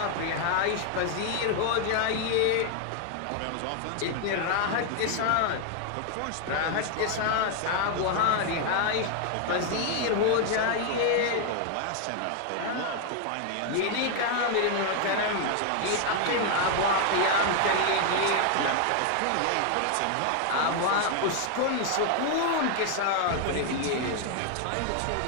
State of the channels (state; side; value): different; both; correlation 0.00